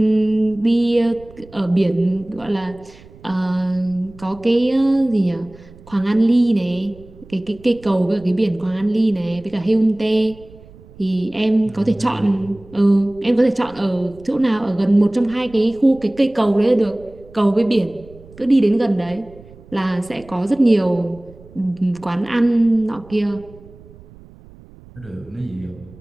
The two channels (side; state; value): right; noise; rumble, 22 dB below the sound